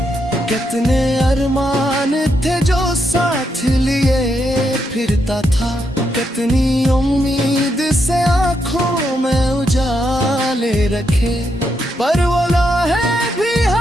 कितने अरमान थे जो साथ लिए फिरता था, कितनी उम्मीद से आंखों में उजाले रखे। पर वो लम्हे भी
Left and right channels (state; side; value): normal; both; correlation 0.80